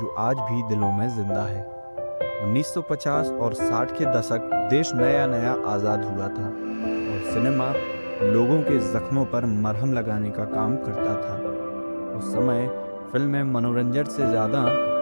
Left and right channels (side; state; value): both; inverted; correlation -1.00